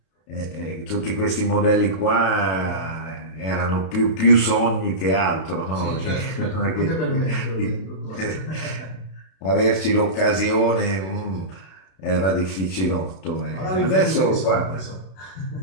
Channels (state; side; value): late; right; 32 ms